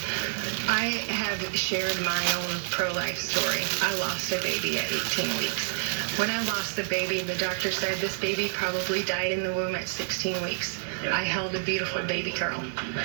I have shared my own pro-life story. I lost a baby at 18 weeks. When I lost the baby, the doctor said this baby probably died in the womb at 16 weeks. I held a beautiful baby girl.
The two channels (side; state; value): left; silent; digital silence